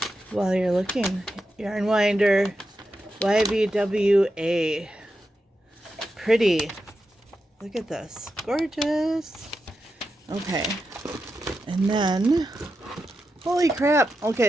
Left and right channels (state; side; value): normal; both; correlation 0.88